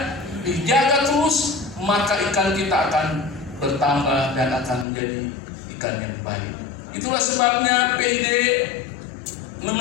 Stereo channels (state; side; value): drops out; right; at 4.9 s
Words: dijaga terus, maka ikan kita akan bertambah dan akan menjadi ikan yang baik. Itulah sebabnya PID